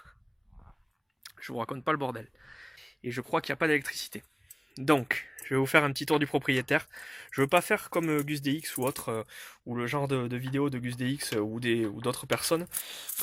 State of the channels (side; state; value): both; identical; correlation 1.00